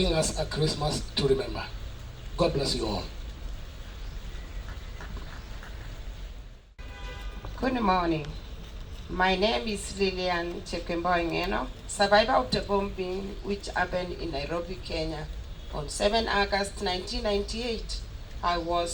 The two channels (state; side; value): identical; both; correlation 1.00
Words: us a Christmas to remember. God bless you all. Good morning. My name is Lilian Ngeno, survivor of the bombing which happened in Nairobi, Kenya on 7 August 1998.